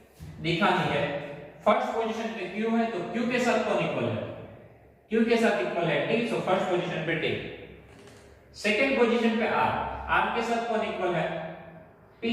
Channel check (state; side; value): identical; both; correlation 1.00